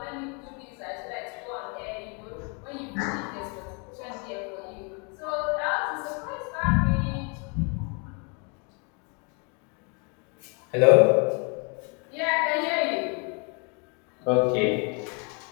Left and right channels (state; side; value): quieter; right; 35.0 dB